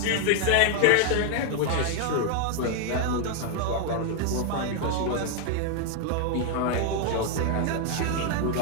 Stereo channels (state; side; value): different; both; correlation 0.00